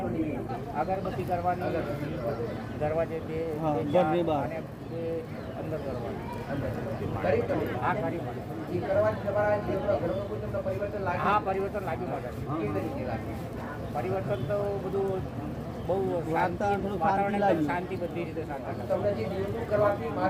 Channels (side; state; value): both; identical; correlation 1.00